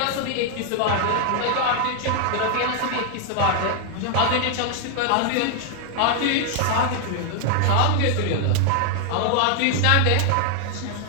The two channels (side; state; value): both; different; correlation 0.00